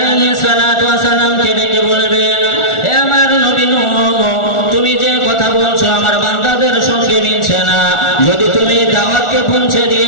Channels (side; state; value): right; late; 1.4 ms